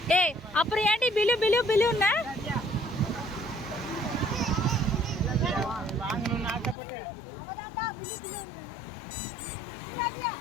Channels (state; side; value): drops out; right; at 6.8 s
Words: ஏய் அப்புறம் ஏன்டி பிலு பிலு பிலுன்னா வாங்கணும்னு ஆசைப்பட்டு